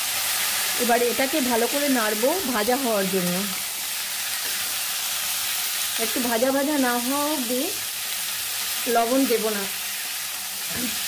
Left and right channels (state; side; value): identical; both; correlation 1.00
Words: এবারে এটাকে ভালো করে নাড়বো ভাজা হওয়ার জন্য। একটু ভাজা ভাজা না হওয়া অবধি লবণ দেব না।